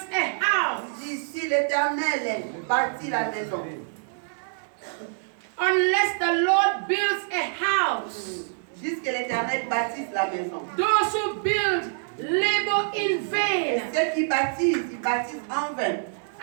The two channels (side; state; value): left; silent; 61 dB below the other